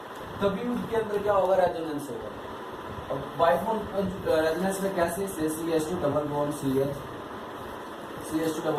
तभी उसके अंदर क्या होगा, रेजोनेंस होगा। और बाइबॉन्ड रेजोनेंस में कैसे, CH2 double bond CH, CH2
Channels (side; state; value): both; identical; correlation 1.00